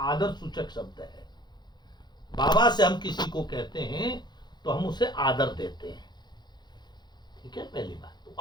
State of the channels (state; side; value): late; right; 0.21 ms